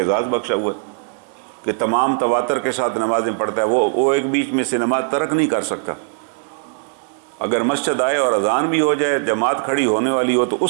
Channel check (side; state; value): left; silent; 66 dB below the other